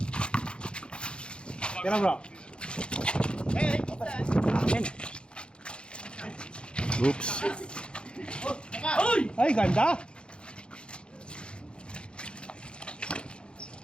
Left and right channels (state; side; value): late; right; 0.054 ms